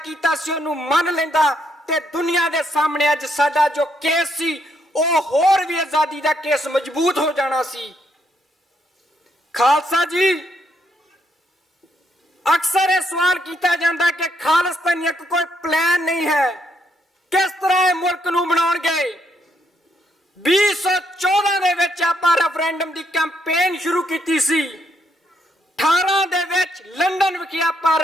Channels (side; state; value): both; normal; correlation 0.75